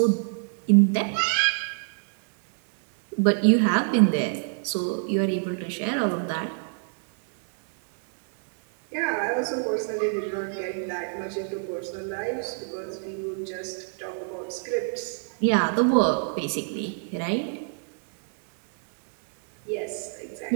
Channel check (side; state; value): left; silent; digital silence